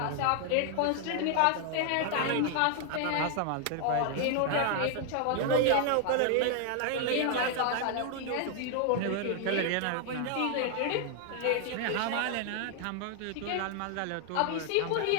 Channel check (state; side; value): different; both; correlation 0.00